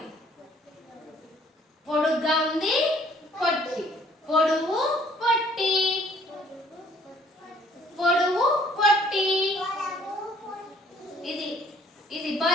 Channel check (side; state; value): both; normal; correlation 0.60